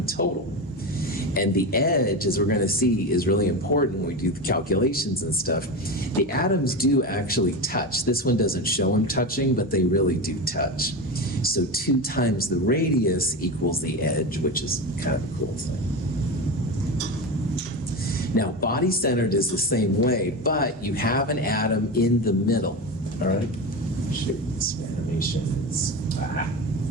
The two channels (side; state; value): both; normal; correlation 0.22